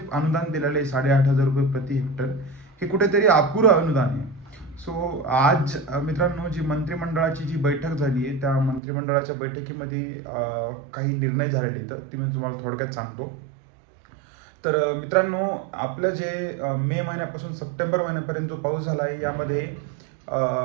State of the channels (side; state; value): left; drops out; at 8.8 s